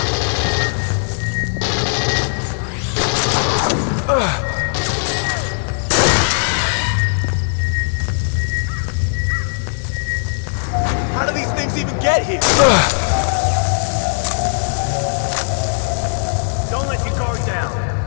How do these things even get here? Don't let your guard down.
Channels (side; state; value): right; silent; digital silence